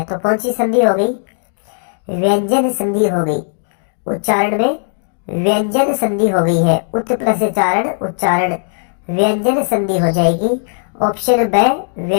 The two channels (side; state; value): right; silent; digital silence